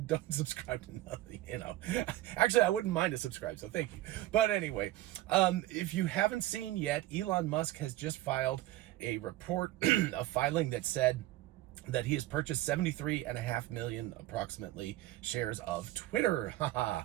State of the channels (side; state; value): left; quieter; 15.9 dB